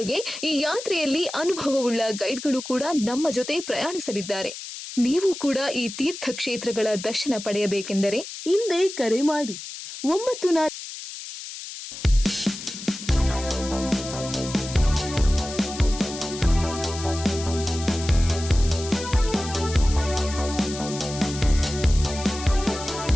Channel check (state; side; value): noise; left; hiss, 10 dB below the sound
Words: ಈ ಯಾತ್ರೆಯಲ್ಲಿ ಅನುಭವವುಳ್ಳ ಗೈಡ್ಗಳು ಕೂಡ ನಮ್ಮ ಜೊತೆ ಪ್ರಯಾಣಿಸಲಿದ್ದಾರೆ. ನೀವು ಕೂಡ ಈ ತೀರ್ಥ ಕ್ಷೇತ್ರಗಳ ದರ್ಶನ ಪಡೆಯಬೇಕೆಂದರೆ ಹಿಂದೆ ಕರೆ ಮಾಡಿ 94